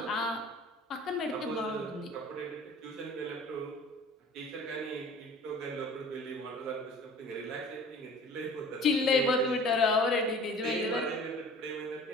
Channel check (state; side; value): normal; both; correlation 0.45